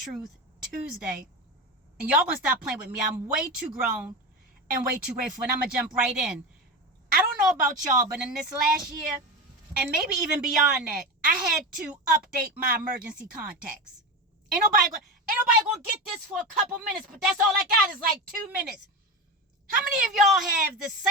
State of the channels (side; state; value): both; normal; correlation 0.21